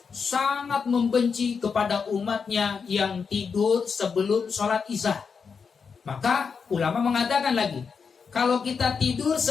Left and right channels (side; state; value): right; quieter; 5.8 dB